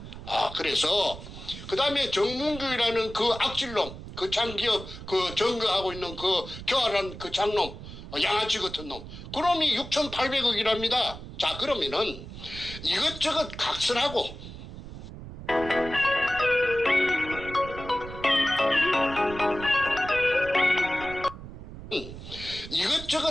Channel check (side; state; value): right; noise; rumble, 12 dB below the sound